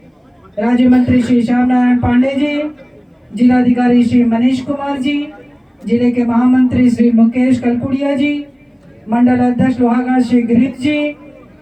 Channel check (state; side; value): identical; both; correlation 1.00